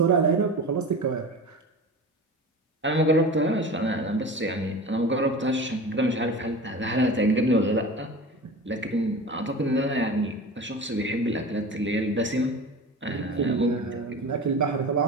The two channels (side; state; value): both; normal; correlation 0.33